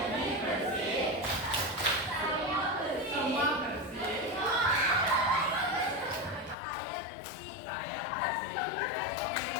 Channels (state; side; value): drops out; right; at 6.6 s